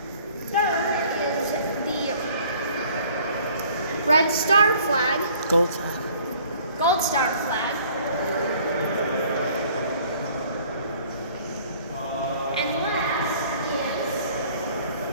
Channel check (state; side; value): inverted; both; correlation -0.55